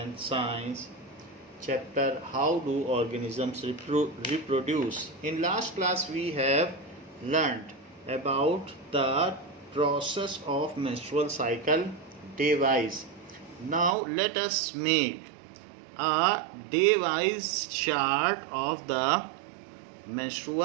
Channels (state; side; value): drops out; left; at 14.0 s